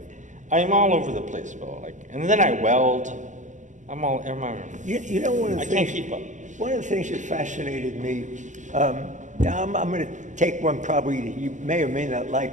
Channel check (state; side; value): late; left; 0.36 ms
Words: I'm all over the place, Bill. Like, and then I weld. You know, one of the I things, can't keep up. One of the things that fascinated me, now I'm going to take one probably that you may or may not